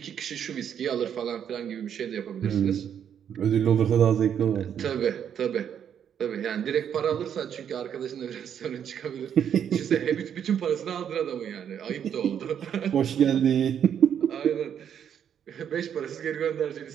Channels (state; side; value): quieter; left; 8.7 dB